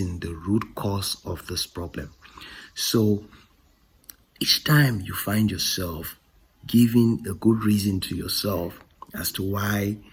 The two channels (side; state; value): both; identical; correlation 1.00